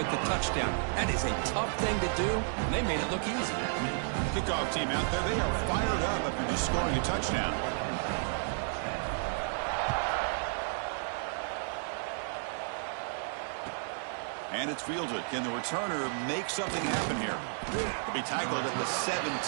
the touchdown. That is a tough thing to do, and they made it look easy. Kickoff team out there, they are fired up after just scoring a touchdown. And it's fielded. Can the returner make something happen here? He'll be tackled at the 17.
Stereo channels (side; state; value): left; silent; digital silence